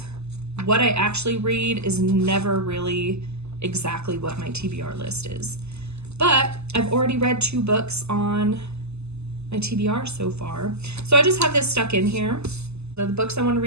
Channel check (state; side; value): late; left; 0.80 ms